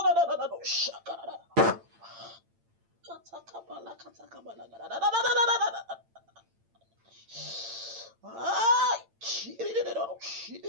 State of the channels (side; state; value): left; late; 8.9 ms